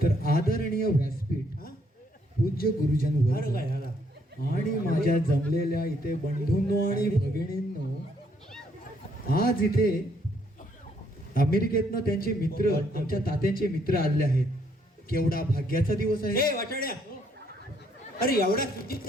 तर आदरणीय व्यासपीठ, हा? पूज्य गुरुजन अरे वर्ग काय झाला आणि माझ्या जमलेल्या इथे बंधूंनो आणि भगिनींनो, आज इथे अमेरिकेतनं त्यांचे मित्र, आमच्या तात्यांचे मित्र आले आहेत. केवढा भाग्याचा दिवस आहे. ए वाटाड्या अरे एवढा सुचित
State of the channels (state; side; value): normal; both; correlation 0.70